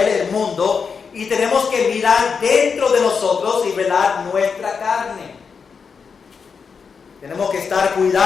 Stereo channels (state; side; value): quieter; right; 5.7 dB